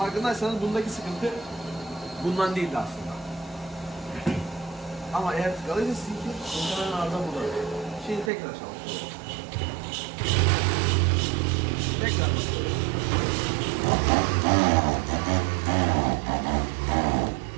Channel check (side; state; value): left; drops out; at 8.3 s